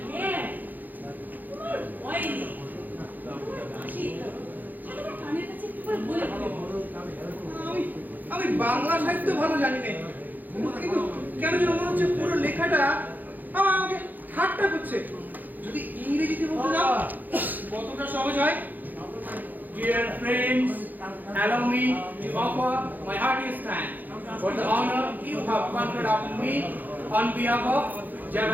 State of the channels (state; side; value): late; left; 0.085 ms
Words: হ্যাঁ, তোমার ভয় নেই। তোমার কানের কাছে একটু করে বলে আমি বাংলা সাহিত্য ভালো জানি না, কিন্তু কেন যেন মনে হচ্ছে পুরো লেখাটা আমাকে ঠাট্টা করছে। যদি ইংরেজিতে বলতে যাও কতটা সহজ হয়। Dear friends, allow me to offer my heartiest thanks for the honor you have conferred upon me on behalf of